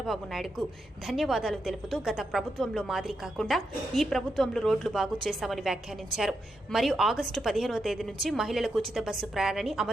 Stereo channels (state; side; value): normal; both; correlation 0.84